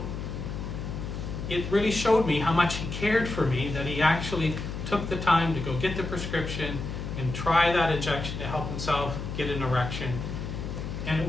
it really showed me how much he cared for me, that he actually took the time to go get the prescription and try that injection to help himself get an erection. And it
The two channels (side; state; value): left; noise; hum, 6 dB below the sound